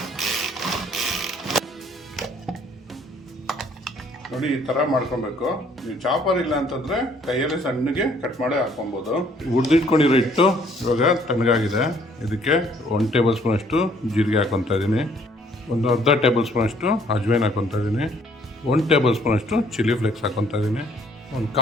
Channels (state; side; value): normal; both; correlation 0.62